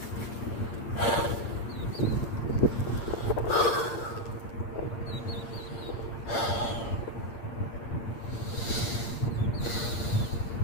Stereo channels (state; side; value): late; right; 8.7 ms